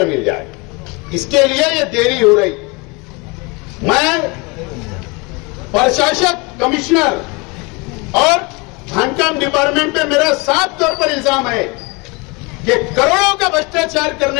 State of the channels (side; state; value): right; quieter; 27.9 dB